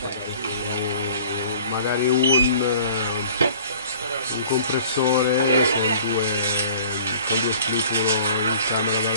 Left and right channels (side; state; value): both; inverted; correlation -0.49